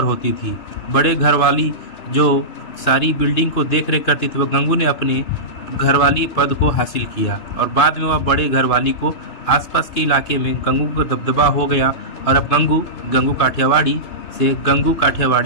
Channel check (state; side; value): late; right; 2.9 ms